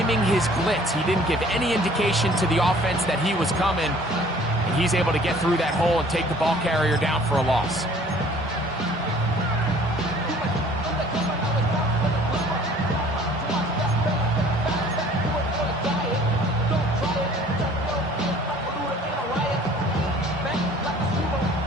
his blitz. He didn't give any indication to the offense that he was coming. And he's able to get through that hole and take the ball carrier down for a loss.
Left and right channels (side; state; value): both; normal; correlation 0.53